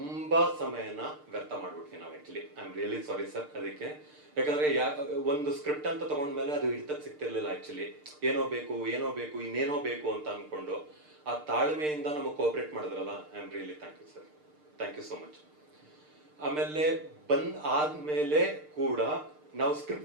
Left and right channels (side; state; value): left; late; 6.6 ms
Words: ಸಮಯನ ವ್ಯರ್ಥ ಮಾಡ್ಬಿಡ್ತೀವಿ ನಾವು actually. I am really sorry sir ಅದಕ್ಕೆ. ಯಾಕಂದ್ರೆ ಒಂದು ಸ್ಕ್ರಿಪ್ಟ್ ಅಂತ ತಗೊಂಡ್ಮೇಲೆ ಅದು ಹಿಡಿತಕ್ಕೆ ಸಿಗ್ತಿರ್ಲಿಲ್ಲ ಆಕ್ಚುಲಿ. ಏನೋ ಬೇಕು ಇನ್ನೇನೋ ಬೇಕು ಅಂತ ಅನ್ಕೊಂಡು ಆ ತಾಳ್ಮೆಯಿಂದ ನಮಗೆ ಕೋಆಪರೇಟ್ ಮಾಡಿದ್ರಲ್ಲ, I am really thank you sir. Thank you so much. ಆಮೇಲೆ ಆದ್ಮೇಲೆ ಕೂಡ ನಾವು